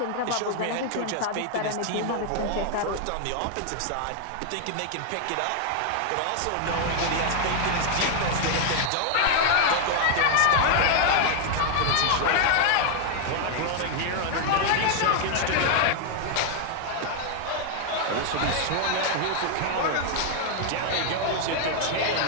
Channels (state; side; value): different; both; correlation 0.00